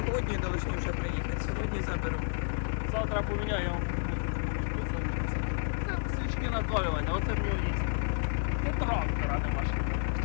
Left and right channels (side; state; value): right; silent; digital silence